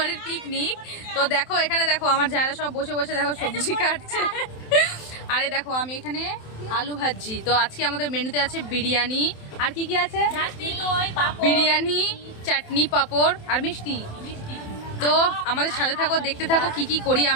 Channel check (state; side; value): late; right; 27 ms